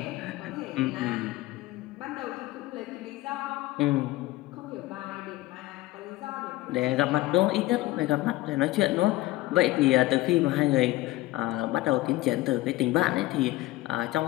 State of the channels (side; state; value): right; quieter; 17.9 dB